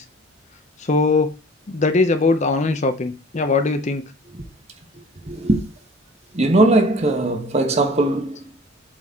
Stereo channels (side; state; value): both; normal; correlation 0.47